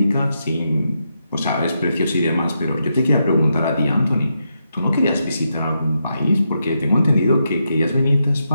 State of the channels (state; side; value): inverted; both; correlation -0.83